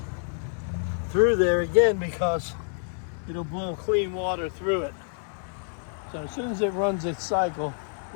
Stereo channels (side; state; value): right; silent; digital silence